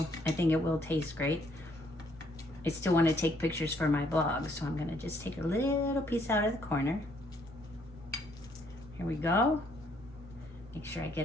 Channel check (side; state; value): both; normal; correlation 0.68